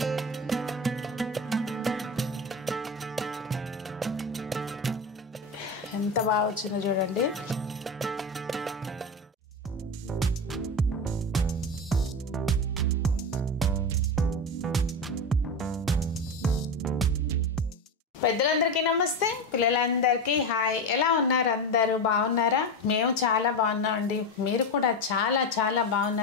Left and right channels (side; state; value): both; normal; correlation 0.19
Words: ఎంత బాగా వచ్చిందో చూడండి. పెద్దలందరికీ నమస్తే, పిల్లలందరికీ హాయ్. ఎలా ఉన్నారు? అందరూ బాగున్నారా? మేము చాలా బాగున్నామండి. మీరు కూడా చాలా చాలా